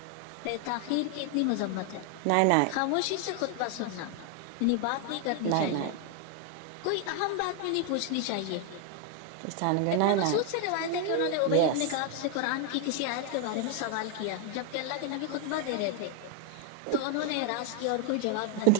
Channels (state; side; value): different; both; correlation 0.00